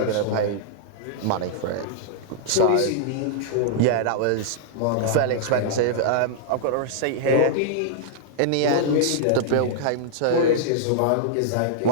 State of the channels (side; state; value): both; different; correlation -0.01